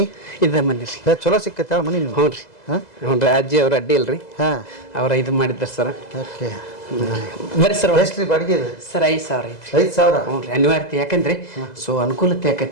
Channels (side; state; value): right; late; 2.0 ms